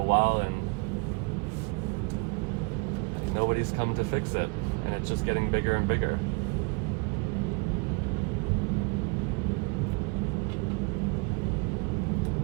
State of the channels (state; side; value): quieter; left; 30.4 dB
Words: while and nobody's come to fix it, and it's just getting bigger and bigger.